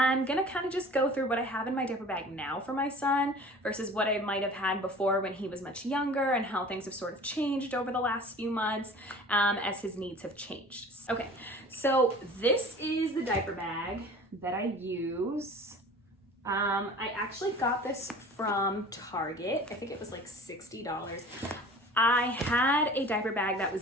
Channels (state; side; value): normal; both; correlation 0.43